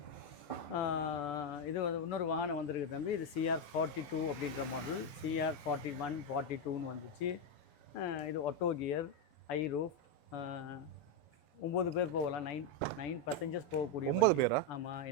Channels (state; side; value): late; right; 6.9 ms